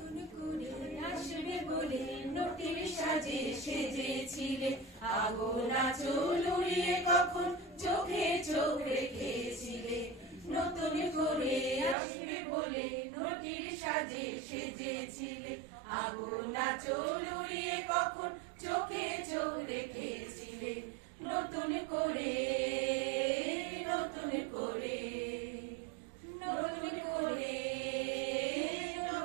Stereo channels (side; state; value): left; drops out; at 12.0 s